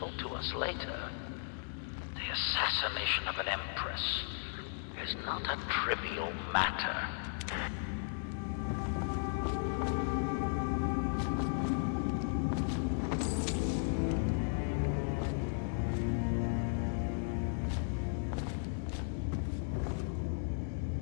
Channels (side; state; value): right; silent; digital silence